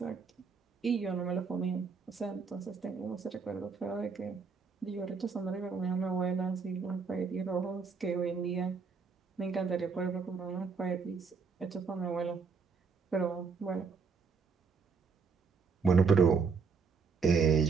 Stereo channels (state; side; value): quieter; left; 5.2 dB